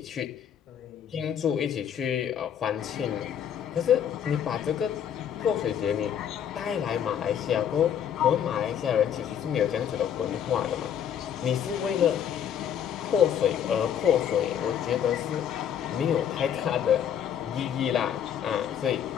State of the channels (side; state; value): right; quieter; 9.0 dB